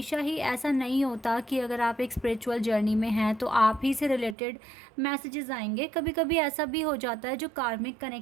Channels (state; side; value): drops out; left; at 4.4 s